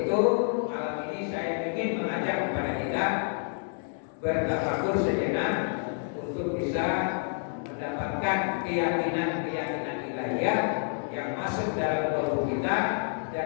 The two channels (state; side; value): silent; right; 59 dB below the other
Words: malam ini saya ingin mengajak kepada kita bertafakur sejenak untuk bisa mendapatkan keyakinan-keyakinan ilahiyah yang masuk dalam tubuh kita,